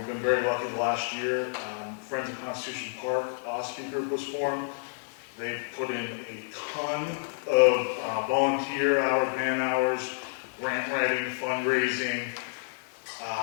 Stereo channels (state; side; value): silent; right; 58 dB below the other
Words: been very lucky the last year. Friends of Constitution Park, Ossipee group was formed. They've put in a ton of volunteer hours, man hours, grant writing, fundraising.